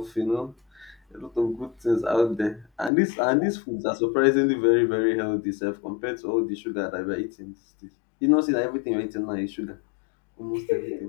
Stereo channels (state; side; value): drops out; right; at 2.9 s